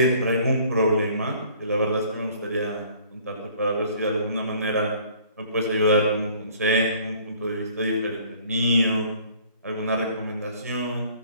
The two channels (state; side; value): inverted; both; correlation -0.55